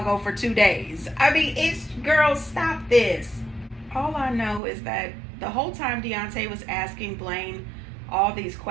for 2 days. I mean, girl, stop this. All I know is that the whole time Deontay was asking Blaine all these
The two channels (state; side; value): drops out; left; at 4.6 s